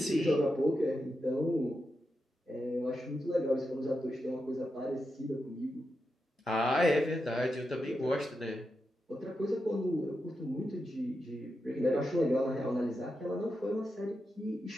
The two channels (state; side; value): normal; both; correlation 0.88